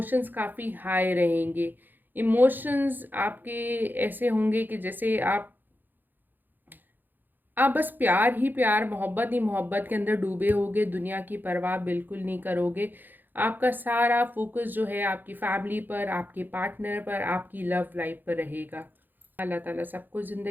काफ़ी हाई रहेंगे। इमोशंस आपके ऐसे होंगे कि जैसे आप बस प्यार ही प्यार, मोहब्बत ही मोहब्बत के अंदर डूबे होगे, दुनिया की परवाह बिल्कुल नहीं करोगे। आपका सारा फोकस जो है आपकी फैमिली पर, आपके पार्टनर पर, आपकी लव लाइफ पर रहेगा। अल्लाह ताला सबको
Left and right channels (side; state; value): left; late; 0.089 ms